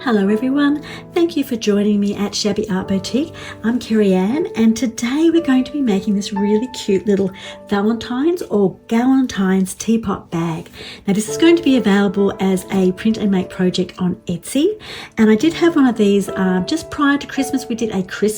Hello everyone, thank you for joining me at Shabby Art Boutique. I'm Kerryanne and today we're going to be making this really cute little Valentine's or Galentine's teapot bag. Now this is going to be available as a print and make project on Etsy, and I did have one of these just prior to Christmas. We did a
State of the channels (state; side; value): identical; both; correlation 1.00